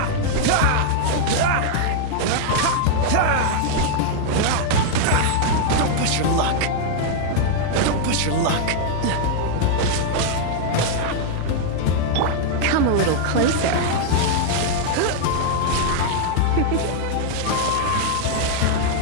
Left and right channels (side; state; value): both; different; correlation 0.00